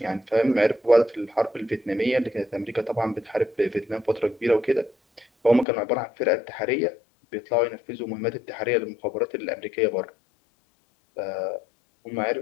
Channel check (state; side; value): drops out; right; at 5.7 s